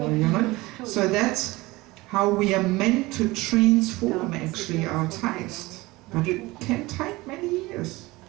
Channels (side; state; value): left; quieter; 20.9 dB